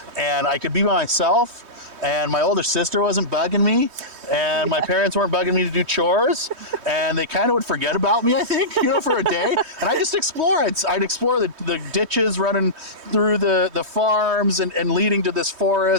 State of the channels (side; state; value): left; late; 3.2 ms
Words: and I could be by myself, and my older sister wasn't bugging me, and my parents weren't bugging me to do chores, and they kind of would forget about me, I think, for a day. And I just explore. I'd explore the ditches running through the farms and leading to this